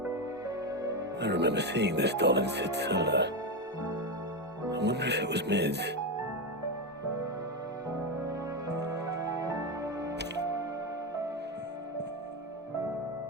I remember seeing this doll in Sid's cellar. I wonder if it was Mid's.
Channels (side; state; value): both; normal; correlation 0.11